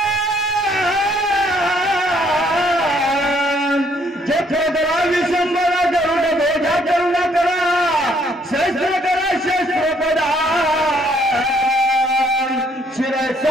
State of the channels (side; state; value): both; normal; correlation 0.67